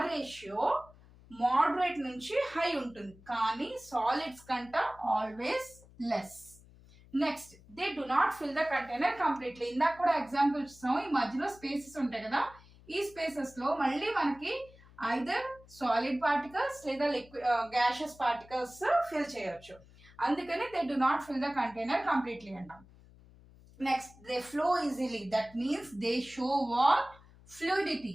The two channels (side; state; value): left; noise; hum, 24 dB below the sound